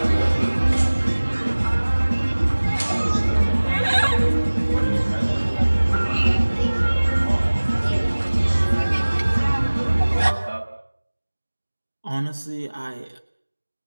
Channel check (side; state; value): both; inverted; correlation -1.00